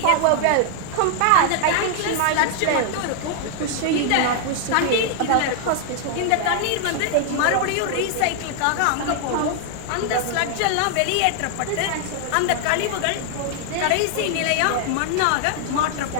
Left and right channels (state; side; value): different; both; correlation 0.00